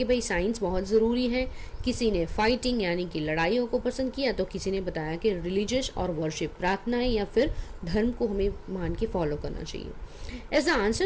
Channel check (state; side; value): identical; both; correlation 1.00